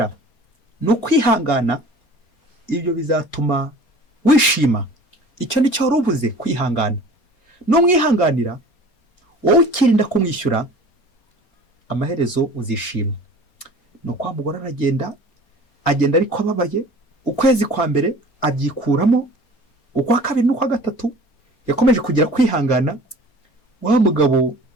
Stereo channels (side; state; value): right; late; 4.3 ms